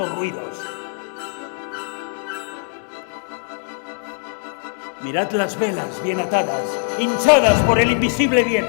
ruidos. Mirad las velas bien atadas, hinchadas por el invisible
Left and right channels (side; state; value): right; silent; digital silence